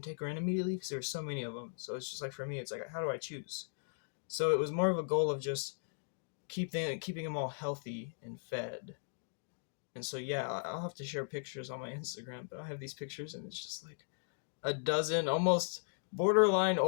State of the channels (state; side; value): silent; right; digital silence